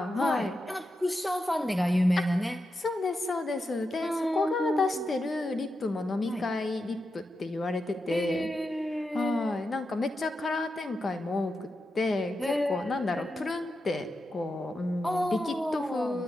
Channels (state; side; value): normal; both; correlation 0.88